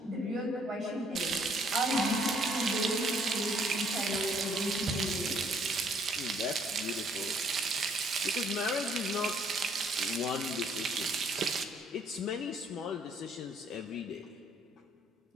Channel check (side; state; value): both; normal; correlation 0.64